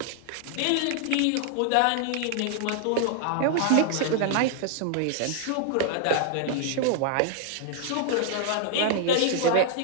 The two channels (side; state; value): both; different; correlation 0.00